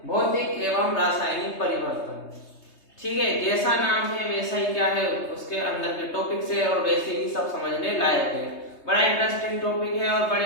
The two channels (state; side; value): late; right; 3.2 ms